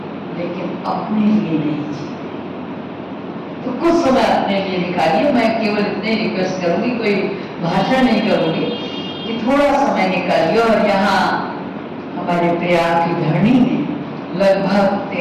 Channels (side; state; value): both; identical; correlation 1.00